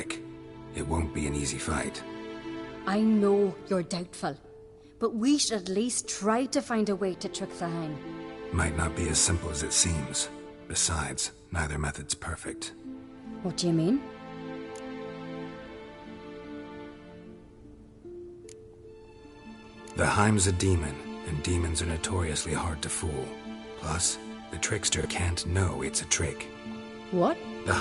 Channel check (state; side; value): identical; both; correlation 1.00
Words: It won't be an easy fight. I know you're doubtful, but we should at least try to find a way to trick the Heim. Might not be as simple as it seems. Besides, neither method's perfect. What do you mean? The Heim's a demon, and demons are notoriously hard to fool. Plus, the trickster can't know it's a trick. What? The